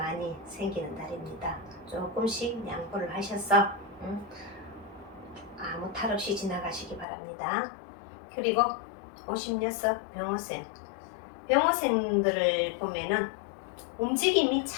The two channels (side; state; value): right; drops out; at 7.1 s